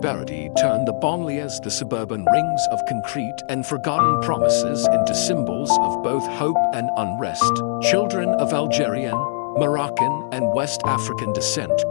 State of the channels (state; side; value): silent; right; digital silence